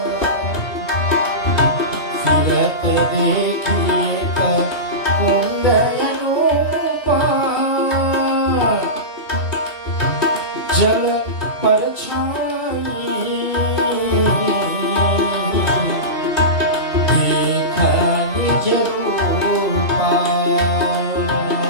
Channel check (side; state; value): right; late; 2.7 ms